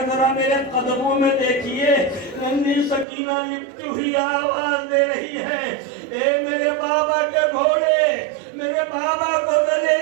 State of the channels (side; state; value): left; drops out; at 3.1 s